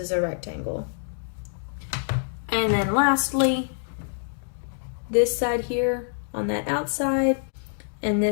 a rectangle. And then lastly, this side here on that outside and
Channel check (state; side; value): silent; right; digital silence